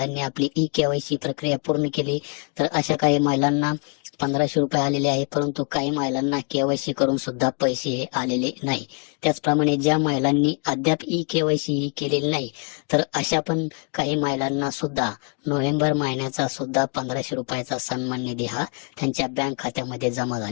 आपली ई-केवायसी प्रक्रिया पूर्ण केली, तर अशा काही महिलांना 1500 रुपये आलेले आहे, परंतु काही महिलांना केवायसी करून सुद्धा पैसे हे आलेले नाही. त्याचप्रमाणे ज्या महिलांनी अद्याप ई-केवायसी ही केलेली नाही, तर अशा पण काही महिलांना सुद्धा नोव्हेंबर महिन्याचा सुद्धा 1500 रुपयाचा सन्मान निधी हा त्यांच्या बँक खात्यामध्ये जमा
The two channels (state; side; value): quieter; right; 37.6 dB